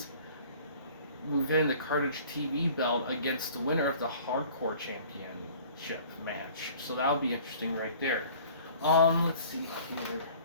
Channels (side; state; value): both; inverted; correlation -0.50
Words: the Carnage TV belt against the winner of the Hardcore Championship match. So that'll be interesting right there. Let's see here.